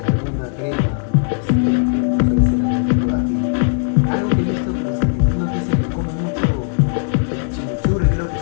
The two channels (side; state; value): right; silent; 61 dB below the other